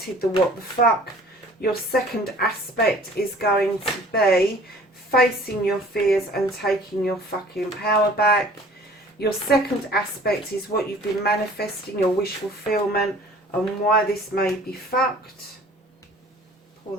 the What the Fuck. Your second aspect is going to be facing your fears and taking your fucking power back. Your second aspect is what you've been manifesting, your wish fulfillment, and why this may be fucked. Pull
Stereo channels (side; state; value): both; normal; correlation 0.50